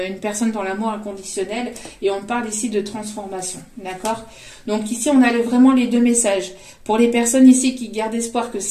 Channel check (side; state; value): both; identical; correlation 1.00